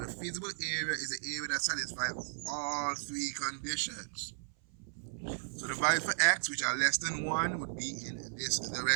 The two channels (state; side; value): silent; left; 54 dB below the other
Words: feasible area is the area that satisfies all 3 conditions. So the value for x, which are less than 1, would be in this